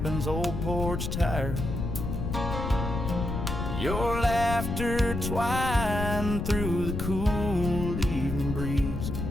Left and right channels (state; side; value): noise; left; rumble, 4 dB below the sound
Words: old porch tire. Your laughter twined through the cool evening breeze,